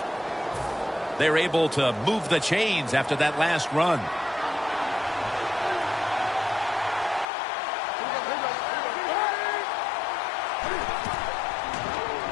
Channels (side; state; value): right; drops out; at 7.2 s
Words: They're able to move the chains after that last run.